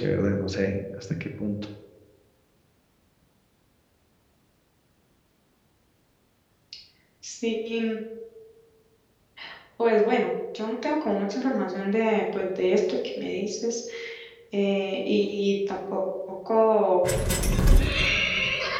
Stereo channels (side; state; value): both; identical; correlation 1.00